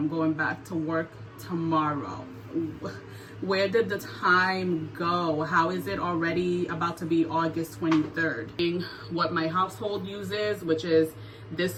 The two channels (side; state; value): both; identical; correlation 1.00